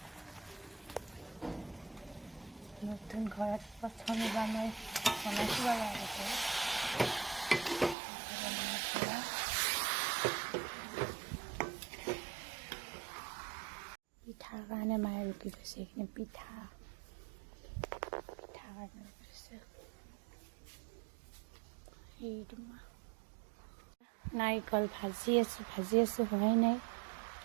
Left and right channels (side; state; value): left; drops out; at 8.0 s